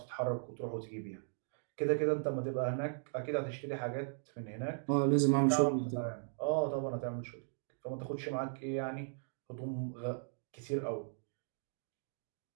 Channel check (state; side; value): silent; left; digital silence